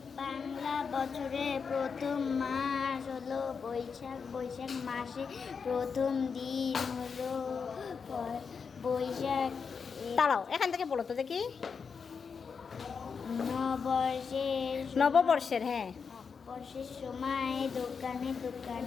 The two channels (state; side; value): quieter; right; 5.8 dB